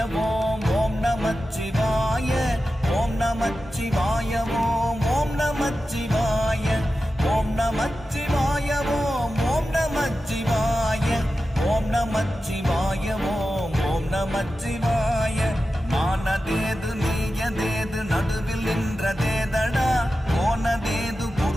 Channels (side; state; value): both; normal; correlation 0.93